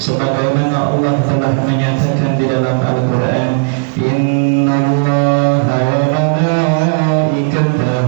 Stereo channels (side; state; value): left; quieter; 37.4 dB